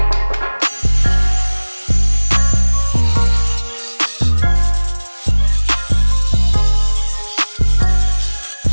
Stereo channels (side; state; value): both; inverted; correlation -1.00